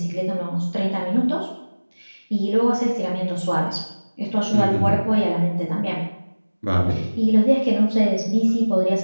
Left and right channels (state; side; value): inverted; both; correlation -1.00